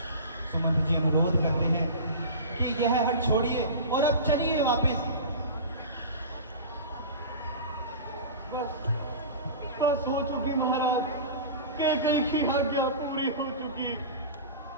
सुमंत्र जी अनुरोध करते हैं कि यह हट छोड़िए और अब चलिए वापस। बस हो चुकी महाराज, कैकई की आज्ञा पूरी हो चुकी।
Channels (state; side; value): inverted; both; correlation -0.33